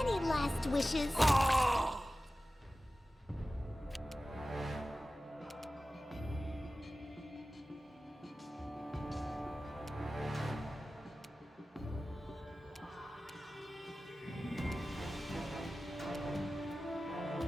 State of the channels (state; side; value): normal; both; correlation 0.96